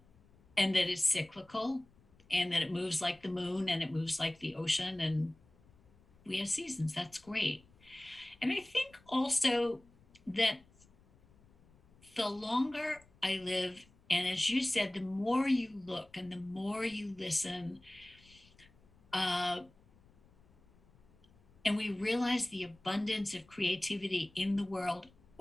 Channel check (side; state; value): left; noise; rumble, 28 dB below the sound